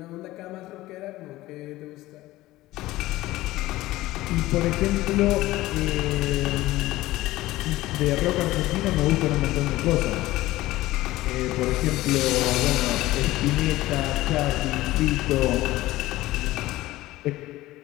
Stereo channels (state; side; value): quieter; right; 17.3 dB